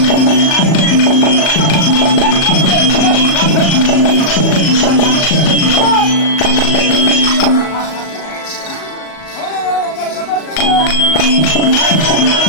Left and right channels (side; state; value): right; late; 38 ms